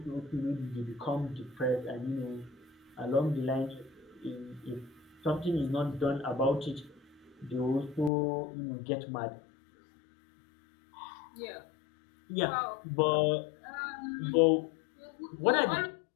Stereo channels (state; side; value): drops out; right; at 8.1 s